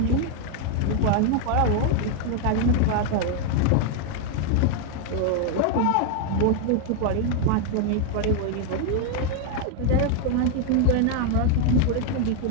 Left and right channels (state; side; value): different; both; correlation 0.00